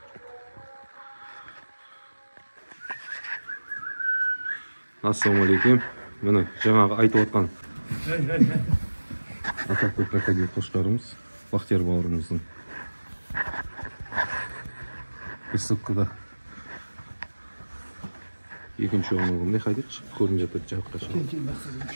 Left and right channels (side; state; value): both; inverted; correlation -1.00